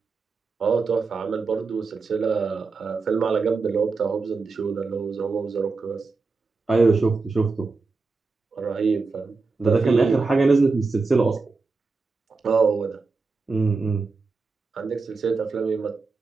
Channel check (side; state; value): left; quieter; 4.2 dB